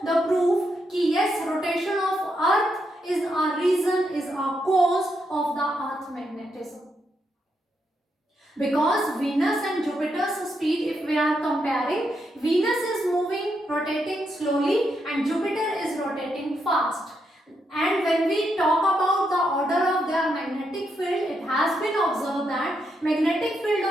the proof कि yes, rotation of Earth is a reason, is a cause of the Earth magnetism. Because Venus and Jupiter's speed, if we are comparing, Venus is moving, rotating slowly, and Jupiter is rotating fast. And when we talk about the order of their magnetic field, it has been observed that magnetic field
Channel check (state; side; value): normal; both; correlation 0.81